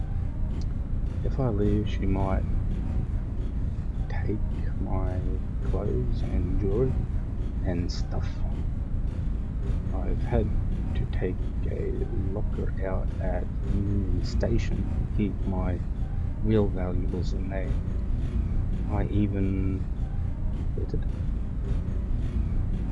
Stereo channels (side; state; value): both; identical; correlation 1.00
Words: If I leave, she might take my clothes and jewelry and stuff. I've had to take a locker out at Union Station to keep my real valuables in there. I even